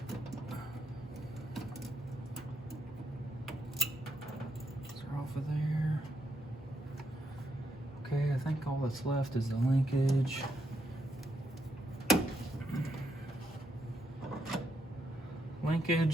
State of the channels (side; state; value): both; normal; correlation 0.78